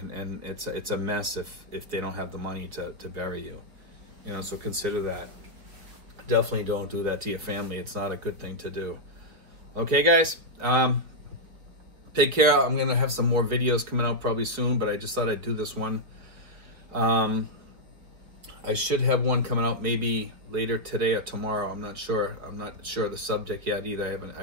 it's a mess if they don't have the money to bury you. You know, so consider that. Definitely don't do that to your family. It's not a good thing to do. Okay, guys? Take care. I'm going to have some more videos coming out probably soon, but I just thought I'd do this one. I should have one coming out maybe later today or tomorrow. I'm not sure. I'm not sure of the subject yet either.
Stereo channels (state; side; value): late; left; 4.5 ms